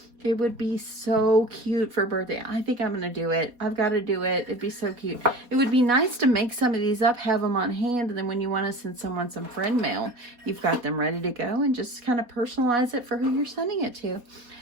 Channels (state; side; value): late; left; 4.2 ms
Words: It would be so cute for birthday. I think I'm going to do it. I've got to do it. It'd be so cute. It would be nice to make some of these up, have them on hand, and then when you want to send someone some friend mail, you've got them ready to go and just kind of personalize it for who you're sending it to.